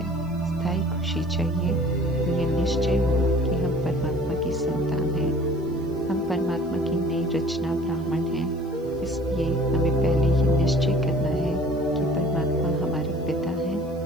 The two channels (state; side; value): noise; right; hiss, 29 dB below the sound